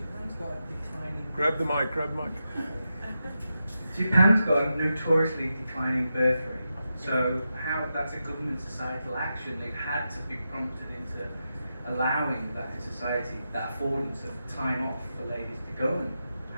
got declining. Grab the mic. Japan's got a notoriously declining birth rate. So how that's a government societal action, they've had to be prompted into allowing that in society, that affordance of time off for ladies to go and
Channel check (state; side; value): inverted; both; correlation -0.89